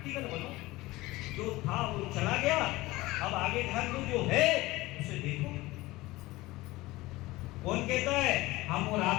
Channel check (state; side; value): quieter; right; 19.6 dB